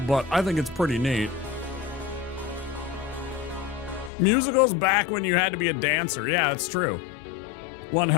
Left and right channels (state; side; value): drops out; right; at 4.1 s